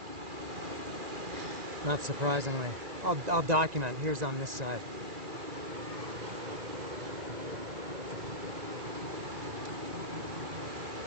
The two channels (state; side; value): late; left; 1.9 ms